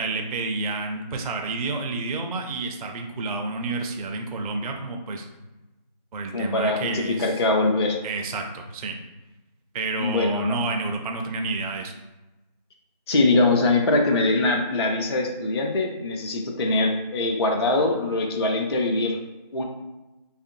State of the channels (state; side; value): inverted; both; correlation -0.45